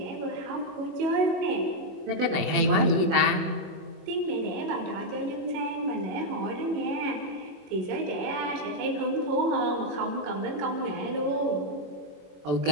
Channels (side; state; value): left; late; 21 ms